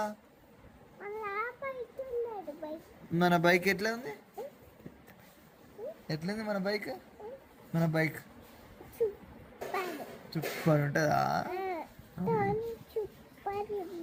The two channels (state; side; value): identical; both; correlation 1.00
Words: మన బైక్ ఎట్లా ఉంది? ఎట్లుంది మన బైక్? మన బైక్ సూపర్ ఉంటుందా?